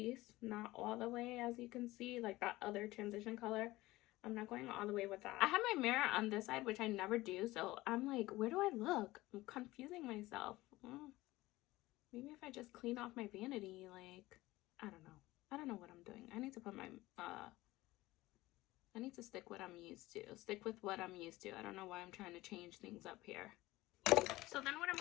not all the way, as you can see, like that other transition color. I'm not going all the way with that. I have my mirror on this side, which I never do. So I'm like, where do I look? I'm confusing myself. Maybe if I just clean off my vanity, like, I don't know. I don't know what I'm doing. I need to put my, I need to stick what I'm used to. Stick with what I'm used to. I don't know why I'm trying to change things up here. So then what I'm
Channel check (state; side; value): quieter; right; 18.5 dB